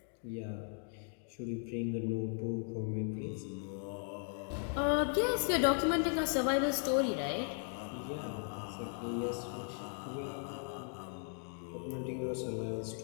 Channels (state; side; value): silent; right; 53 dB below the other